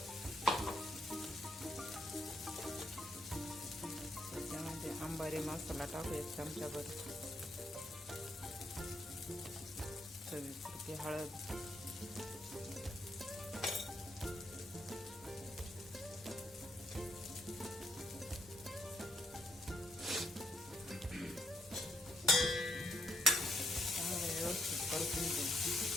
त्याच्यामध्ये अंबारी मसाला टाकू 1 चमचाभर. चवीपुरती हळद, चांगलं व्यवस्थित परतून घेऊ.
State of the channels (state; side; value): normal; both; correlation 0.75